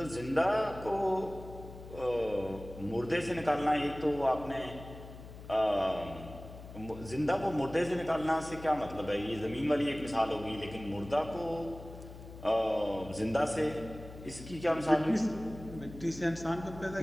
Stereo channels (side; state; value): left; noise; hum, 14 dB below the sound